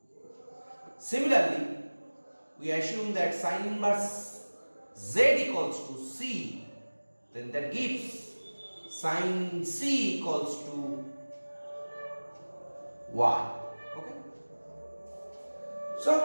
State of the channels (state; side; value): inverted; both; correlation -1.00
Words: Similarly, we assume that sin inverse z equals to c, then that gives sin c equals to y. Okay, so